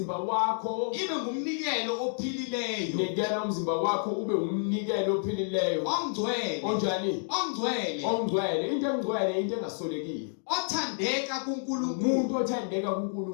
wakho Ibe ngumnikelo ophilileyo. Nikela umzimba wakho ube umnikelo ophilileyo. Ongcwele. Onjani? Ongcwele. Ongcwele. Into engcwele into engasolekile. Othandeka kuNkulunkulu. Umuntu othandeka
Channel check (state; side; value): silent; right; digital silence